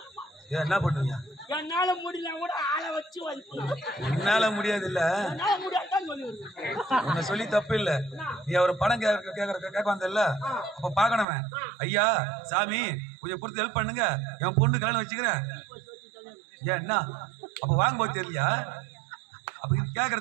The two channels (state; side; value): drops out; left; at 11.2 s